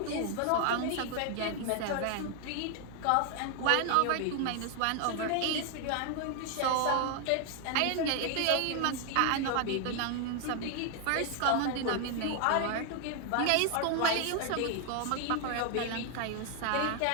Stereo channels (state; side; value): different; both; correlation 0.00